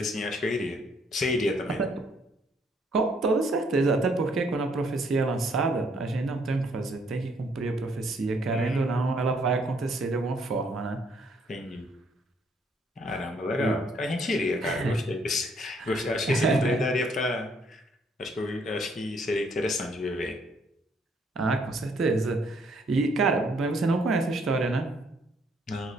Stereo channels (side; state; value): both; normal; correlation 0.67